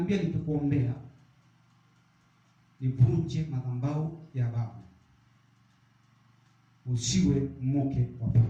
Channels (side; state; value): both; identical; correlation 1.00